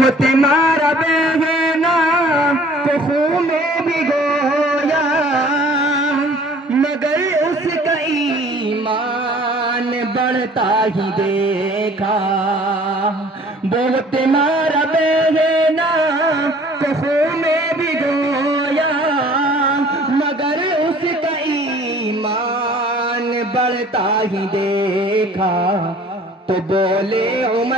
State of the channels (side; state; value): both; normal; correlation 0.52